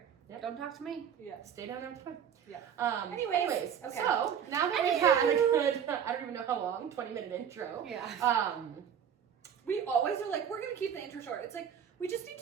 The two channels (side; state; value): left; quieter; 8.4 dB